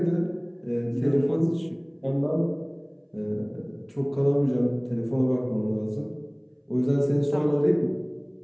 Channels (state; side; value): identical; both; correlation 1.00